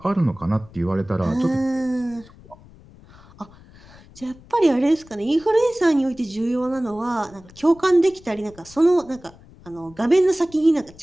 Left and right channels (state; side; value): noise; left; rumble, 23 dB below the sound